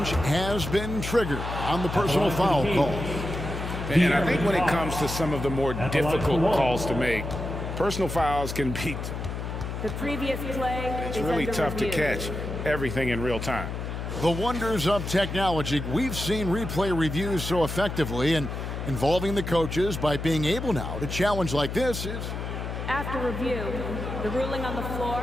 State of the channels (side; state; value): left; noise; hum, 5 dB below the sound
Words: has been triggered on the personal foul call. And I think when it comes to some of the more difficult calls to make, personal fouls can be... The previous play It's really tough to catch everything in real time. The wonders of technology. We've seen replay reviews so effectively, and involving the coaches by being able now to challenge like this is... After review, the ruling on the floor